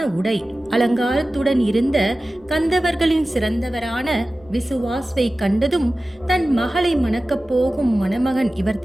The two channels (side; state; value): right; noise; rumble, 29 dB below the sound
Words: உடை அலங்காரத்துடன் இருந்த கந்தவர்களின் சிறந்தவரான விசுவாஸ்வை கண்டதும் தன் மகளை மணக்கப் போகும் மணமகன்